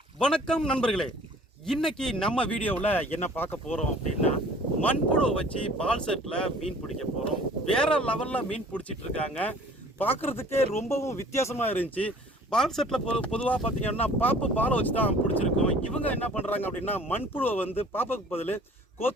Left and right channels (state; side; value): normal; both; correlation 0.51